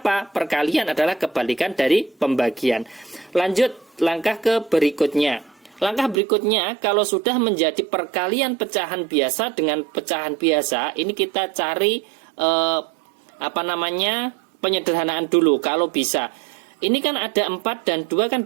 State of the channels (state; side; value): drops out; left; at 6.2 s